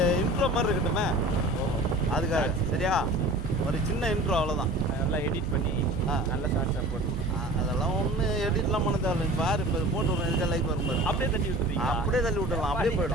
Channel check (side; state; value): right; noise; hum, 10 dB below the sound